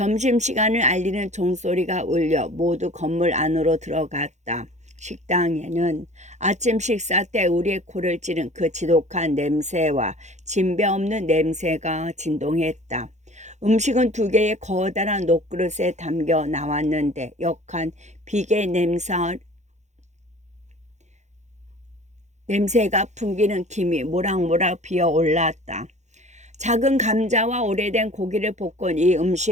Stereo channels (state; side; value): late; left; 0.34 ms